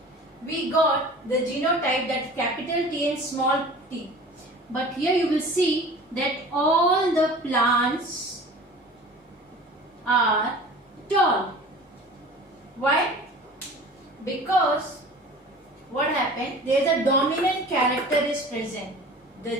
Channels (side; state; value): both; normal; correlation 0.42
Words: we got the genotype that capital T and small t. But here you will see that all the plants are tall. Why? Because what happened? There is a dominant character is present.